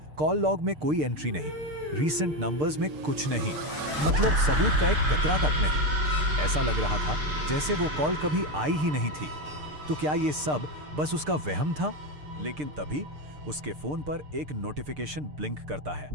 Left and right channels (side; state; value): left; late; 6.7 ms